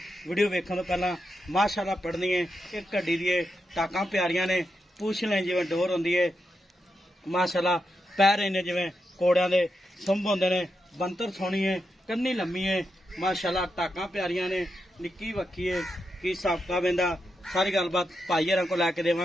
वीडियो वेखण तो पहला माशाल्लाह पढ़नी है एक घड़ी दी टाकां प्यारियां ने पूछ लें जिवें डोर होंदी है माशाल्लाह पैर इन्ने जिवें कोड़ियां दे सुंभ होंदे ने बंतर सोहनी है कन्नी लम्मी है माशाल्लाह टाकां प्यारियां ने निक्की वक्की है की हिसाब किताब इहदा सारी गलबात भाईयारां को लैके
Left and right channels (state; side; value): normal; both; correlation 0.86